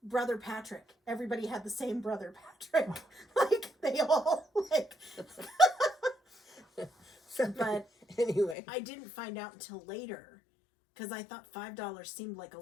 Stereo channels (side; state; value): right; drops out; at 8.6 s